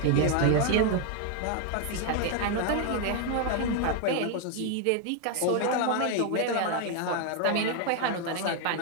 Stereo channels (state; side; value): different; both; correlation 0.01